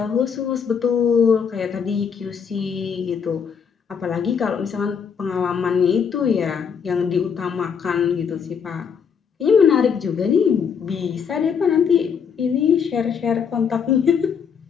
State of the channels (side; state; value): right; quieter; 6.8 dB